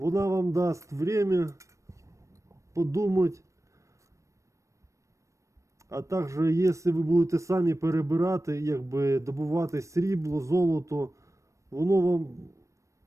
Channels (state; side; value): late; left; 0.15 ms